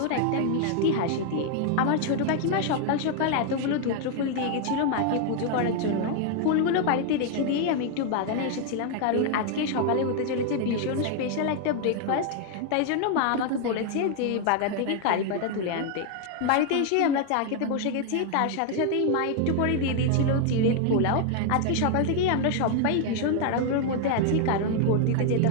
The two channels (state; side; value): different; both; correlation 0.00